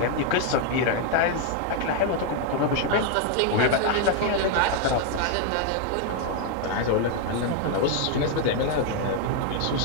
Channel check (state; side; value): different; both; correlation 0.00